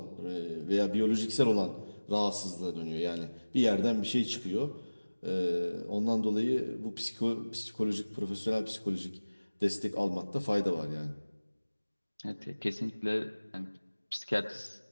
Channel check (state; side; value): inverted; both; correlation -1.00